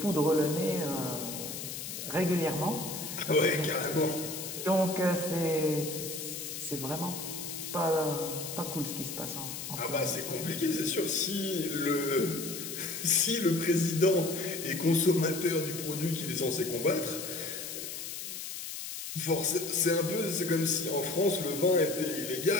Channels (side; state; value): left; noise; hiss, 7 dB below the sound